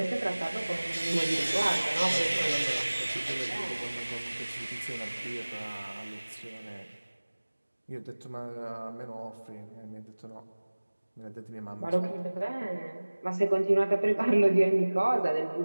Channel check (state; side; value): inverted; both; correlation -1.00